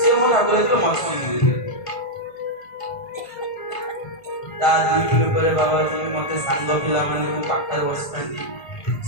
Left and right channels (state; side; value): late; right; 1.5 ms